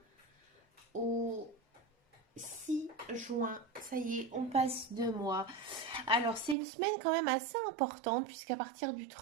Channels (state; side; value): drops out; left; at 6.6 s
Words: au 6 juin, ça y est, on passe 2 mois. Alors c'est une semaine quand même assez importante puisqu'à partir du